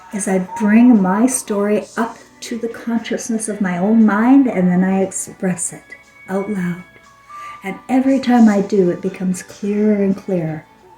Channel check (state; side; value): identical; both; correlation 1.00